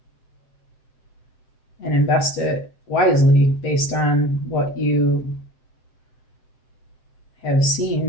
And invest it wisely based on what you have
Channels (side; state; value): right; late; 7.7 ms